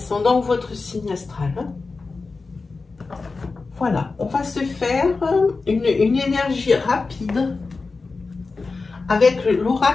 ou votre signe astral. Hein. Voilà, on va se faire une énergie rapide avec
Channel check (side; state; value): right; quieter; 4.1 dB